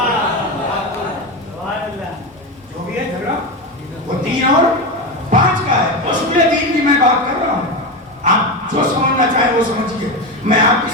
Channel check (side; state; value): both; normal; correlation 0.17